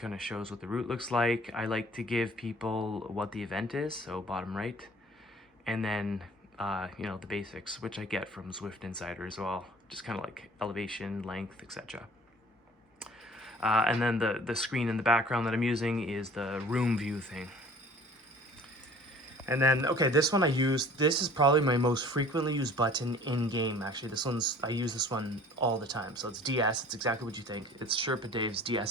of shows what the route looks like. I like to give people what the event is, so bottom right. And then, you know, the basics, which I get from Zwift Insider as well. Just kind of like elevation, length, etc. And then the screen in the background that I'm using is the room view thing. And then, okay, this one I use, this is probably my most frequently used button in-game, actually. I use this one all the time. So it's DS, it's exactly what you think. It's Sherpa Dave's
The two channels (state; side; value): normal; both; correlation 0.49